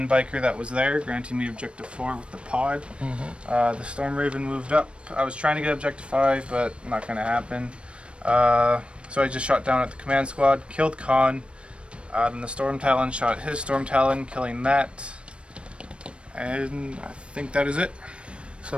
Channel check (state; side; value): late; left; 0.058 ms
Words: biker that was there, granting me objective 4 with the pod. The Storm Raven moved up. I was trying to get objective 5, but not going to happen. So I just shot down at the command squad, killed Khan. Then the Storm Talon shot his Storm Talon, killing that. And I think that is it.